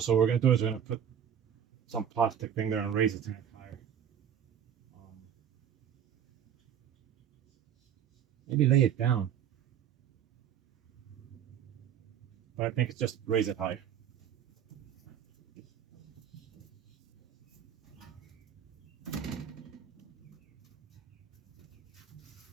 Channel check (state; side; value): quieter; left; 9.0 dB